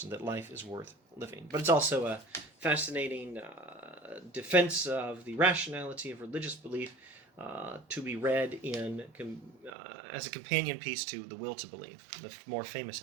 that life is worth living. But it's also a fascinating defense of the rationality of religious belief, to be read in as a companion piece to The Will to Believe, the more famous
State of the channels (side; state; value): left; drops out; at 9.7 s